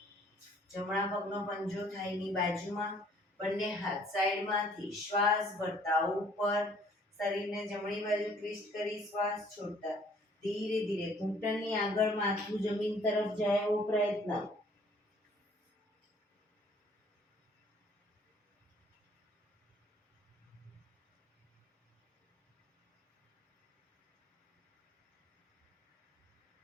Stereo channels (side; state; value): both; normal; correlation 0.59